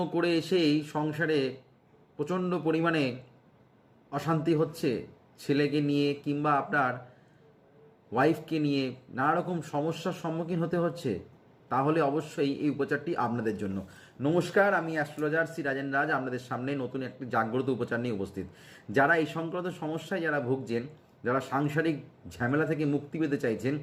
করে এসেই সংসারে প্রচণ্ড পরিমাণে অশান্তি হচ্ছে, ছেলেকে নিয়ে কিংবা আপনার ওয়াইফকে নিয়ে নানা রকম সমস্যার সম্মুখীন হতে হচ্ছে। তাহলে অবশ্যই এই উপচারটি আপনাদের জন্য। নমস্কার, আমি অ্যাস্ট্রোলজার শ্রী রাজেন রাজ আপনাদের সামনে নতুন একটি জাগ্রত উপচার নিয়ে উপস্থিত। যারা এই সংক্রান্ত সমস্যায় যারা ভুগছেন, যারা সাংসারিক ঝামেলা থেকে মুক্তি পেতে চাইছেন,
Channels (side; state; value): both; identical; correlation 1.00